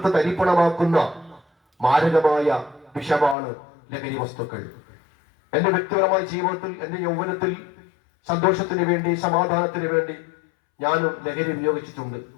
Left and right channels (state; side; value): drops out; right; at 3.4 s